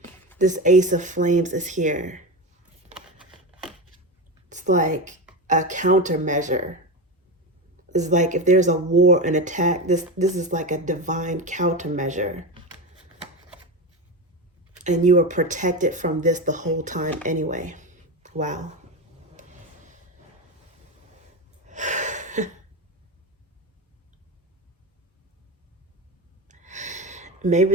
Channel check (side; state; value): both; normal; correlation 0.19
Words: This Ace of Flames is here. It's like a countermeasure. It's like if there's a war, an attack, this is like a divine countermeasure. And you were protected from this the whole time anyway. Wow.